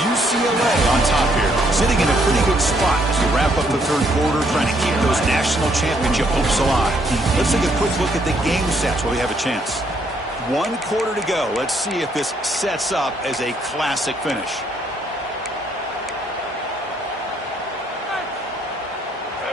UCLA on top here, sitting in a pretty good spot as we wrap up the third quarter, trying to keep those national championship hopes alive. Let's take a quick look at the game sets while we have a chance. 1 quarter to go. Let's see if this sets up as a classic finish.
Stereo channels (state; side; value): normal; both; correlation 0.70